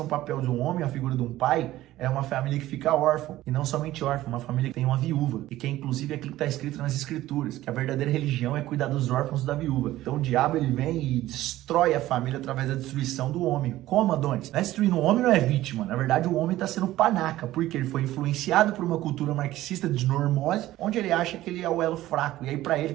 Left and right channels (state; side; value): quieter; left; 15.4 dB